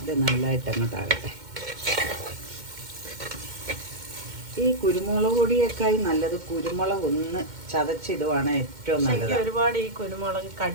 ഇത് നല്ലതായിട്ട് അങ്ങോട്ടാകട്ടെ. ഈ കുരുമുളക് പൊടിയേക്കായി നല്ലത് കുരുമുളക് ഒന്ന് ചതച്ചിടുവാണ് ഏറ്റവും നല്ലത്. ഒരുപാട് ഈ കുരുമുളക്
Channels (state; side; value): late; left; 2.1 ms